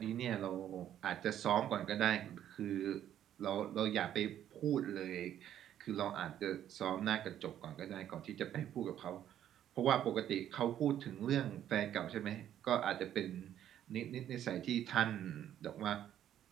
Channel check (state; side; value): quieter; left; 10.9 dB